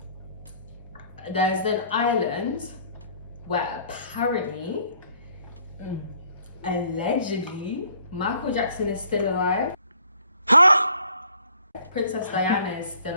there's an island where apparently, allegedly, Michael Jackson is still alive. Huh? Princess Diana is still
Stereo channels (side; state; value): both; inverted; correlation -0.59